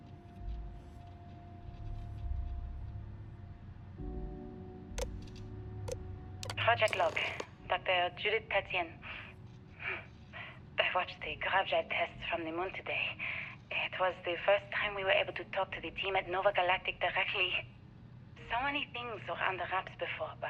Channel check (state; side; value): identical; both; correlation 1.00